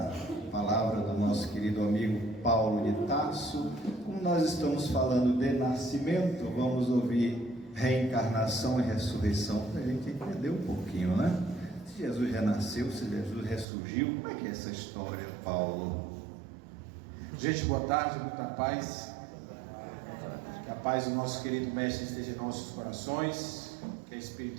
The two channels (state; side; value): drops out; left; at 13.7 s